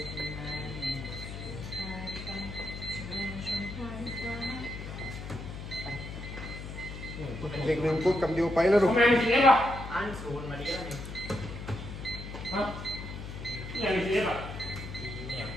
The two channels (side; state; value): left; noise; hum, 9 dB below the sound